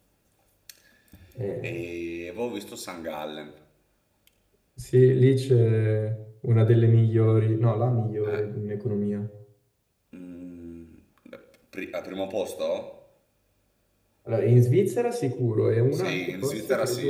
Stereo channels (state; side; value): identical; both; correlation 1.00